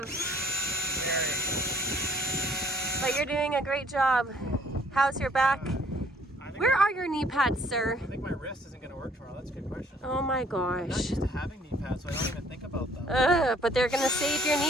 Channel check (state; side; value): normal; both; correlation 0.61